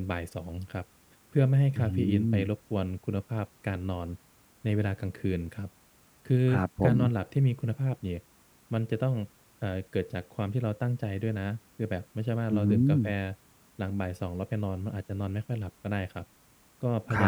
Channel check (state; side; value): identical; both; correlation 1.00